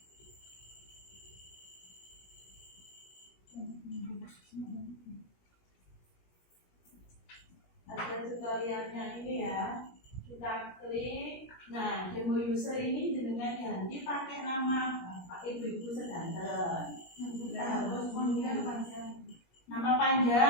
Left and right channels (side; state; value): right; late; 17 ms